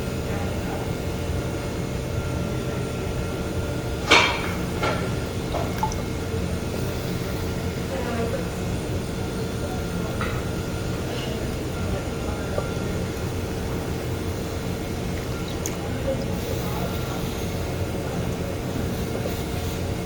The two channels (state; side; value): identical; both; correlation 1.00